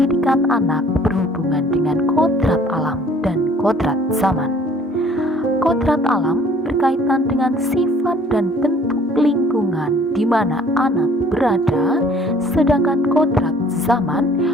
anak berhubungan dengan kodrat alam dan kodrat zaman. Kodrat alam berkaitan dengan sifat dan bentuk lingkungan di mana anak berada, sedangkan kodrat zaman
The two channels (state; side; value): normal; both; correlation 0.56